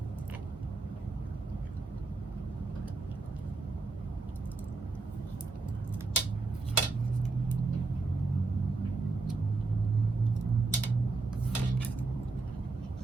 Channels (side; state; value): left; quieter; 3.7 dB